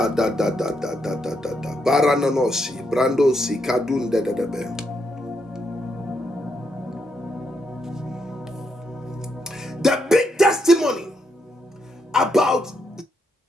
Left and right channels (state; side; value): normal; both; correlation 0.79